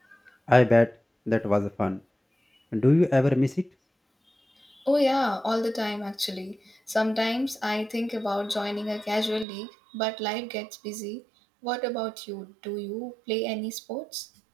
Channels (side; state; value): left; drops out; at 9.5 s